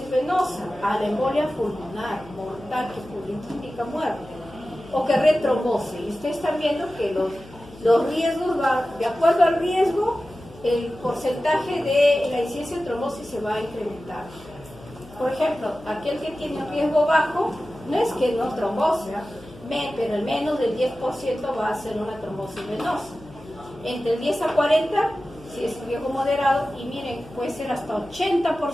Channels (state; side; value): noise; left; hum, 21 dB below the sound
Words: venosa, a la embolia pulmonar, mortal, que indica muerte, o que retrombose. Y ustedes están viendo que los riesgos van, de acuerdo al riesgo, el porcentaje de la incidencia de trombosis se va a incrementar. Por ejemplo, aquel que tiene un riesgo bajo, no es que no trombose, pero el menos del 10% va a ser una trombosis venosa. Entre el 10 a 40, si es riesgo moderado, y miren, puede ser hasta